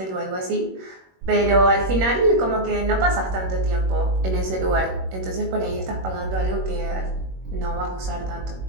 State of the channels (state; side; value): late; left; 21 ms